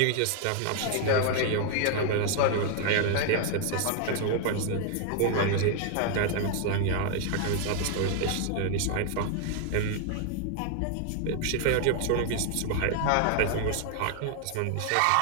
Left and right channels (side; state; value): both; different; correlation 0.00